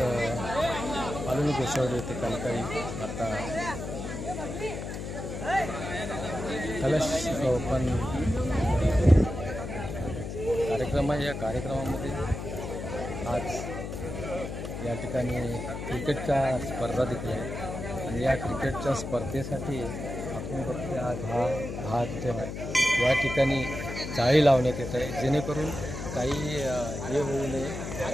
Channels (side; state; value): left; noise; hum, 6 dB below the sound